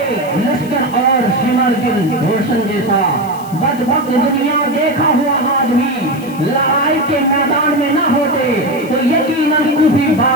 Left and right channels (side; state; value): left; noise; hiss, 20 dB below the sound